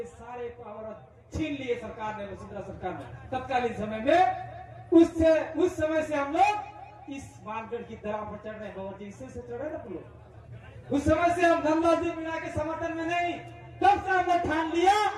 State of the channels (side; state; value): both; identical; correlation 1.00